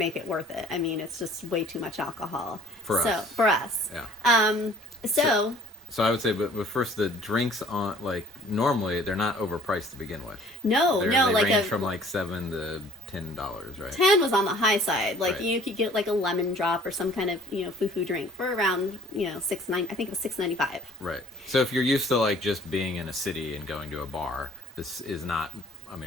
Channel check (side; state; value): both; normal; correlation 0.54